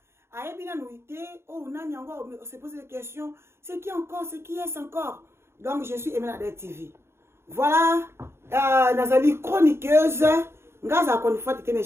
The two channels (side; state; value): left; late; 0.12 ms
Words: a bien nuité, oh, on se pose des questions, c'est qui encore, c'est qui est encore. Donc, je suis la Cadet TV. Voilà, Nazali chroniqueuse, mais